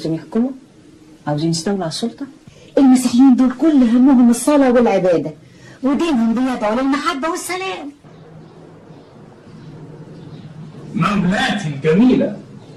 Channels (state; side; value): identical; both; correlation 1.00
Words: يحكموا؟ عاوزين يستولوا على السلطة؟ المسيحيين دول كل همهم الصلاة والعبادة، ودينهم بيدعوا للمحبة والسلام. مولاتي الجميلة،